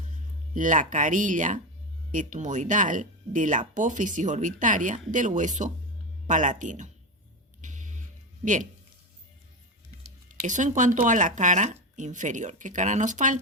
La carilla etmoidal de la apófisis orbitaria del hueso palatino. Bien, eso en cuanto a la cara inferior. ¿Qué cara nos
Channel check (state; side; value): normal; both; correlation 0.16